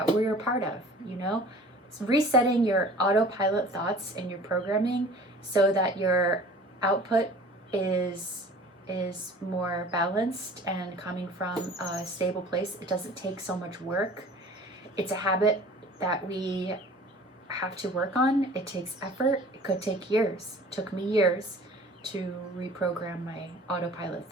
we're a part of, you know? It's resetting your autopilot thoughts and your programming so that your output is more balanced and coming from a stable place. It doesn't take so much work. It's a habit that we have to work on. It takes effort. It could take years. It took me years to reprogram my autopilot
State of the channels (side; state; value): both; normal; correlation 0.46